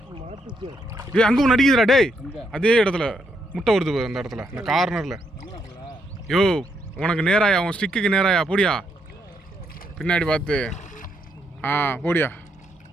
மாட்டுச்சு. ஏய் அங்கே ஒன்று அடிக்குதுடா டேய், அதே இடத்துல முட்டை வருது அந்த இடத்துல, அந்த கார்னரில். யோ உனக்கு நேராயா, உன் ஸ்டிக்குக்கு நேராயா, போடியா பின்னாடி பார்த்து. போடியா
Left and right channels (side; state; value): both; normal; correlation 0.77